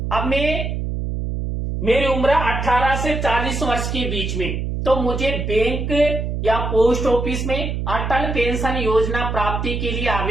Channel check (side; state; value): right; noise; hum, 3 dB below the sound